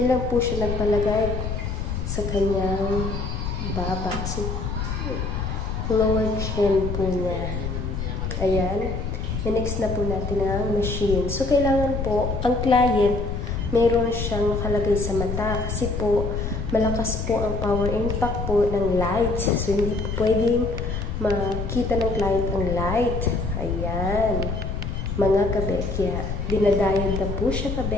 lang po siya nagpalagay sa kanyang baba. Lower chin po niya. Ayan. I-next na po natin ang machine. So, kailangan po, ang client, meron siyang nakalagay sa mata. Kasi po, malakas po ang power impact po ng light. So, hindi po pwedeng makita ng client ang light. Ayan. Mga kabekya. Dinadiode na po siya,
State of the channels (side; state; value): left; noise; rumble, 3 dB below the sound